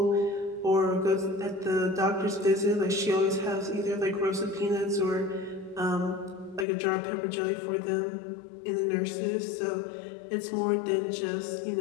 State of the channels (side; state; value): right; drops out; at 6.7 s